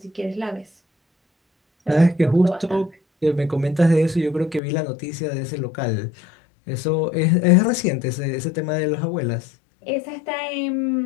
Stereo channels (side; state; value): right; drops out; at 4.6 s